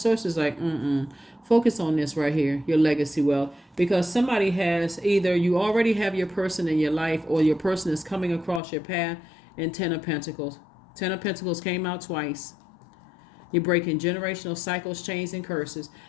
like focus on this right here, your legacy wealth, because somebody has, either you already have your person in your life or your person is coming across your path. And 10 of Pentacles. 10 of Pentacles came out twice. You're breaking generational cycles, chains, and curses.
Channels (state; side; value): drops out; right; at 8.6 s